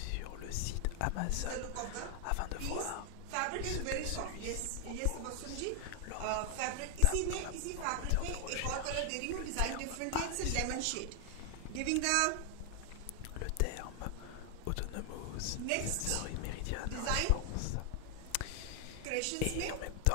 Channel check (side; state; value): both; different; correlation 0.00